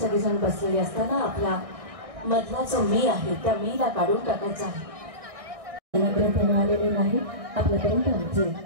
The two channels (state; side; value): late; left; 1.6 ms